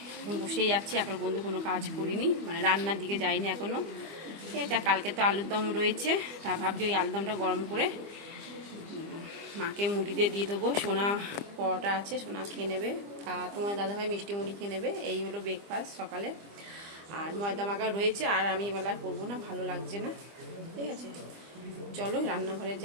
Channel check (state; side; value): late; left; 25 ms